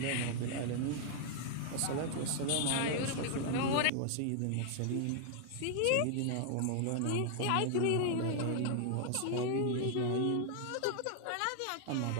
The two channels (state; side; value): different; both; correlation 0.00